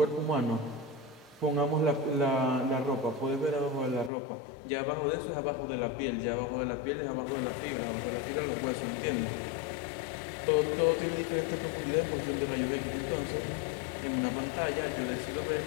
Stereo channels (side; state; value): right; drops out; at 4.1 s